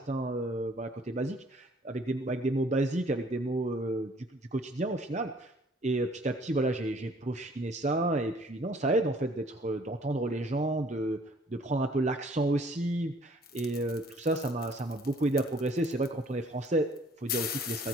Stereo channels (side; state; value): both; normal; correlation 0.57